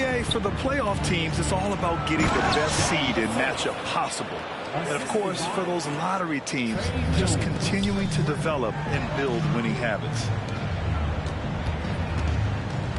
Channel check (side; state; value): both; identical; correlation 1.00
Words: for the playoff teams, it's all about getting the best seed and matchup possible. And, of course, for those lottery teams, just continuing to develop and build winning habits.